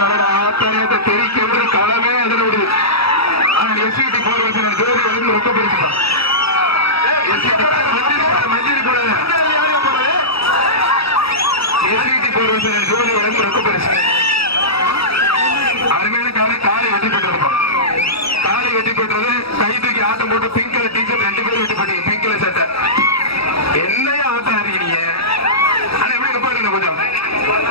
ஆத்தாயத்தை தெரிக்க களமே அதில் விடுது. ஆனால் எஸ்சிடி போர் வச்சு ஜோதி வந்து ரொம்ப பிடிச்சிட்டான். மஞ்சள் போடாது எஸ்சிடி போர் வச்சு ஜோதி வந்து ரொம்ப பெருசு. அருமையான காலை வெட்டி பெற்றிருப்பான். காலை வெட்டி பெற்றது கை தூக்கி ஆட்டம் போட்டு பிங்க் கலர் டீச்சர் 2 பேரும் வெட்டி போட்டீங்க. பிங்க் கலர் சட்டை என்னையா ஆட்டம் இருக்கீங்க. ஆனா எப்படி நிப்பாட்டுங்க கொஞ்சம்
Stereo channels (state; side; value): late; right; 0.77 ms